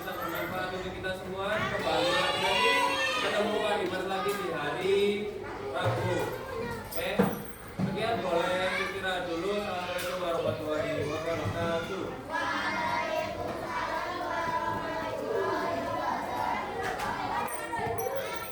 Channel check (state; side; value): identical; both; correlation 1.00